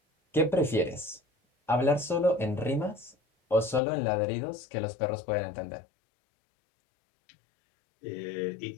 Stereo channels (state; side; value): drops out; right; at 3.8 s